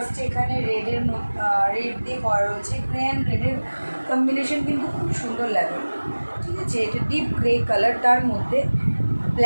এখানে রেডের রেড দিয়ে করা রয়েছে। গ্রে অ্যান্ড রেডের কম্বিনেশন কিন্তু খুব সুন্দর লাগে, ঠিক আছে। এটা ডিপ গ্রে কালার, তার মধ্যে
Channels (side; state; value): both; inverted; correlation -1.00